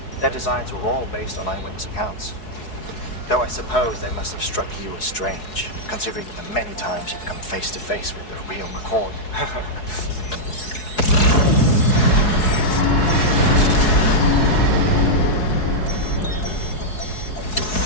Their designs were all based on eyewitness accounts. Though I suppose they must have struck you as strange, considering the many times you've come face to face with the real McCoy.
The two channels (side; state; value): right; late; 4.7 ms